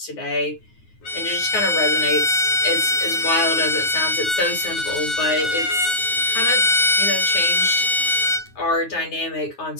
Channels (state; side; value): late; right; 9.5 ms